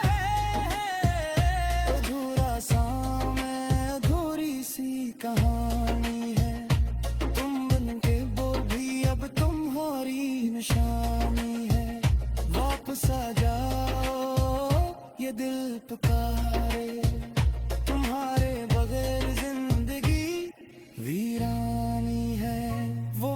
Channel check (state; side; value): identical; both; correlation 1.00